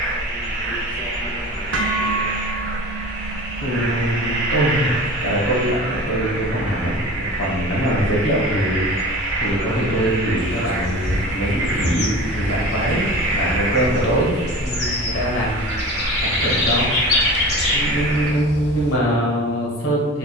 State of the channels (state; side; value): normal; both; correlation 0.37